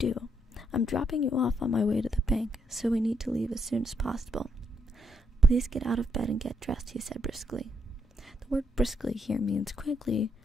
I'm dropping you off on my way to the bank, so we need to leave as soon as possible. Please get out of bed and get dressed, he said briskly. The word briskly here means quickly,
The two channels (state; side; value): normal; both; correlation 0.77